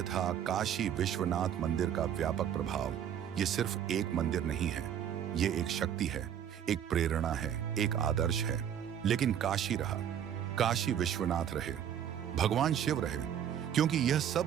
था काशी विश्वनाथ मंदिर का व्यापक प्रभाव। ये सिर्फ एक मंदिर नहीं है, ये एक शक्ति है, एक प्रेरणा है, एक आदर्श है। लेकिन काशी रहा, काशी विश्वनाथ रहे, भगवान शिव रहे, क्योंकि यह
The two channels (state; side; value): quieter; left; 9.4 dB